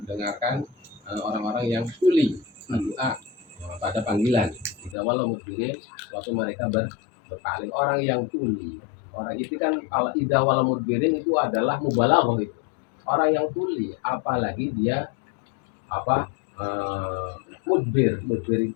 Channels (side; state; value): right; drops out; at 5.0 s